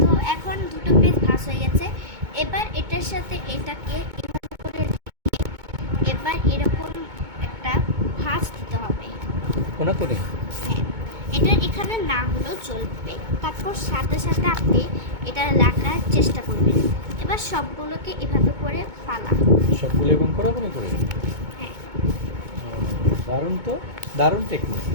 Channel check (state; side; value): late; left; 2.2 ms